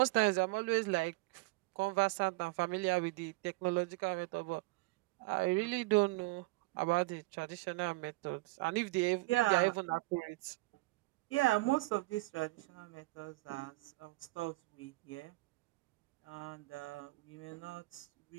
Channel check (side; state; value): left; quieter; 22.6 dB